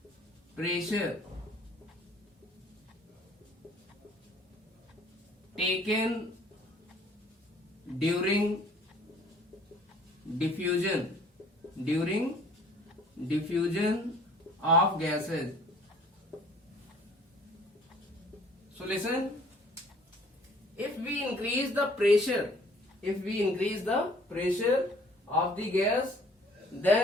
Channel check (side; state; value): both; normal; correlation 0.55